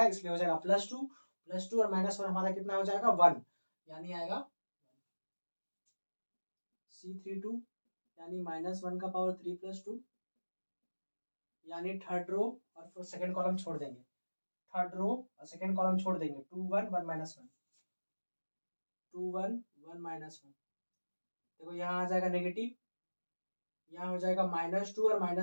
इसलिए हो जाएगा +2 और -1 हमारा कितना हो जाएगा 1, यानी आएगा C32, यानी -1 का पावर 3 + 2, यानी थर्ड रो और फिर सेकंड कॉलम छोड़ देंगे, थर्ड रो और सेकंड कॉलम छोड़ देंगे, 2 1 1 -1, 2 1 1 -1, देखो यहाँ आ जाएगा नेगेटिव, यहाँ हो जाएगा -2 और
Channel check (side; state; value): both; inverted; correlation -1.00